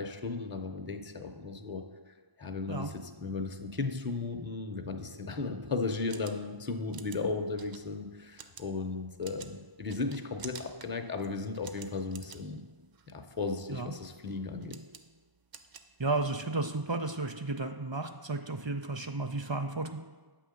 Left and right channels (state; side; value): late; left; 1.0 ms